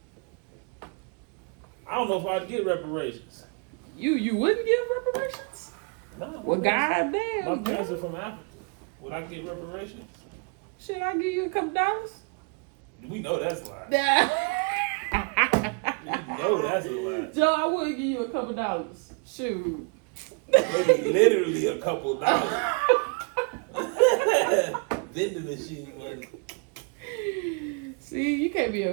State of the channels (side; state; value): left; quieter; 35.3 dB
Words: I don't know if I'd get reparations. You wouldn't give reparations? No. Well, My goddamn. parents are from Africa. Would I get reparations? Shit, I give you a couple dollars. We know that's a lie. Yeah. We know that's a lie. Joe, I would give you a couple dollars. Shoot. Maybe literally a couple dollars. Vending machine money. See, you can't be